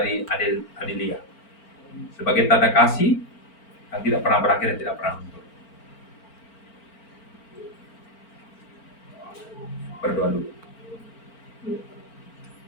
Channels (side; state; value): right; late; 4.4 ms